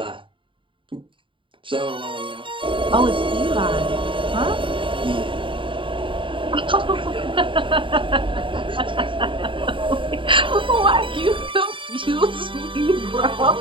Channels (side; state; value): left; late; 0.25 ms